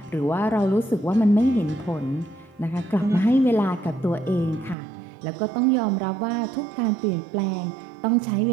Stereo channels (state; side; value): drops out; left; at 4.8 s